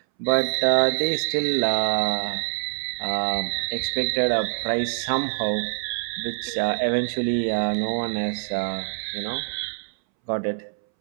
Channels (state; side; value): silent; left; 62 dB below the other